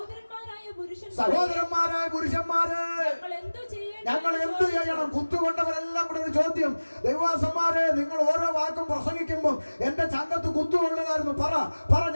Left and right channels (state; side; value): inverted; both; correlation -1.00